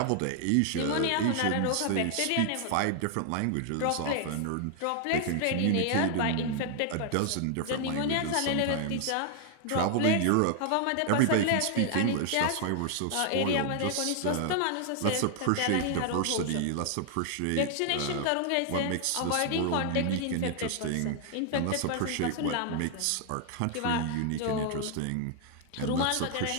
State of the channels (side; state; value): both; different; correlation 0.00